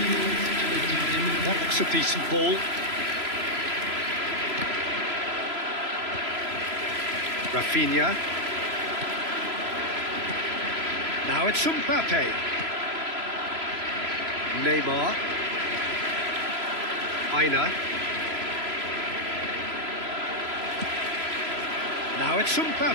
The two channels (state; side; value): late; left; 3.0 ms